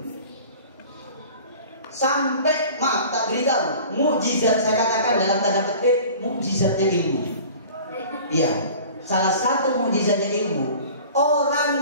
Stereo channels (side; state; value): both; inverted; correlation -0.43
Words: Sampai, maaf tak beritahu, mukjizat, saya katakan dalam tanda petik, mukjizatnya ilmu. Iya, salah satu mukjizatnya ilmu. Orang